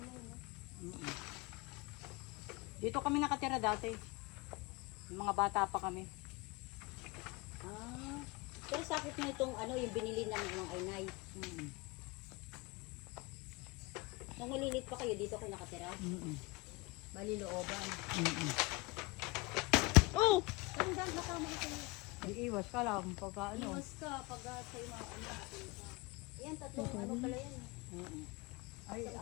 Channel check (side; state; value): right; quieter; 24.2 dB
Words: Dito kami nakatira dati. Yung mga bata pa kami. Ah. Pero sakit mo itong ano, yung binili ng mga inay. Nung malilit pa kayo, dito kayo nakatira? Bali looban. Oh! Parang dahil nakama ka kayo. Iiwas ka lang pagka ano. Iwas ka pag sa'yo mga ano. Yan, tatlong ano pala yan. Ay,